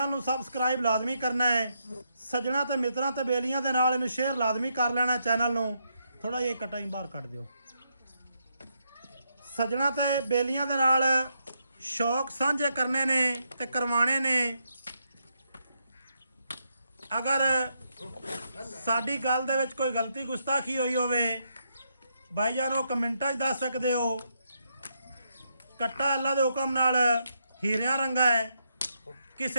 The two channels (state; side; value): inverted; both; correlation -0.80